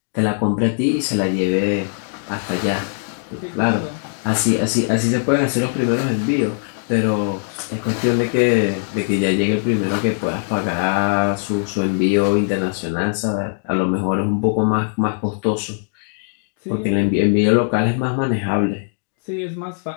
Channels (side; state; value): right; silent; digital silence